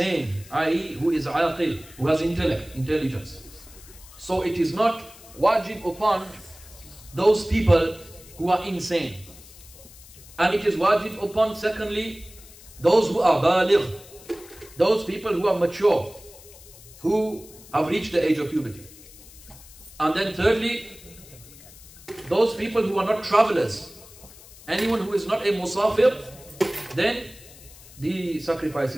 i.e. who is aqil, who has intelligence. So it is not wajib upon those people who are insane. And it is wajib upon, secondly, those who are baligh, those people who are mature, who have reached the age of puberty. And then thirdly, those people who are not travelers. Anyone who is not a musafir, then the sacrifice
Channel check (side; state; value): left; noise; hiss, 20 dB below the sound